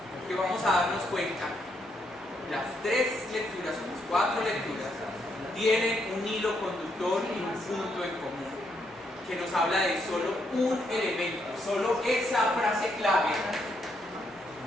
que vamos a darnos cuenta, las 3 lecturas o las 4 lecturas tienen un hilo conductor y un punto en común que nos habla de solo un elemento, solo esa frase clave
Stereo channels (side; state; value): both; normal; correlation 0.76